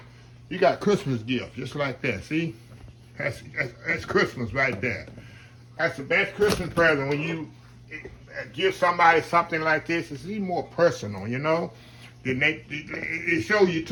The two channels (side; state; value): both; identical; correlation 1.00